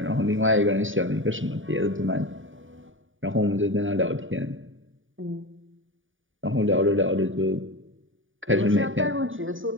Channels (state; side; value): late; left; 0.57 ms